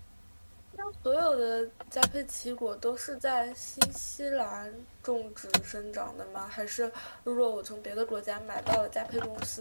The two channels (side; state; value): both; inverted; correlation -1.00